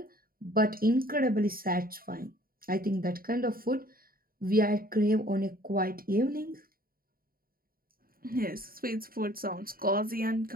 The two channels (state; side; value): late; left; 0.42 ms